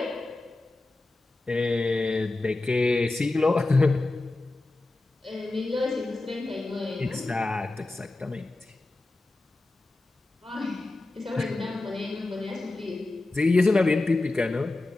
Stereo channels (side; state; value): right; quieter; 3.0 dB